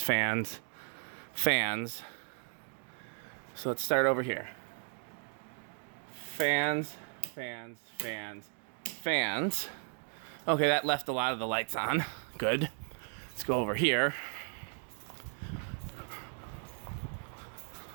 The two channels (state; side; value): silent; left; 54 dB below the other